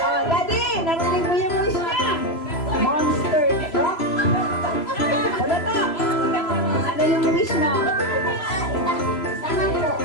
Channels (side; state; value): right; late; 3.0 ms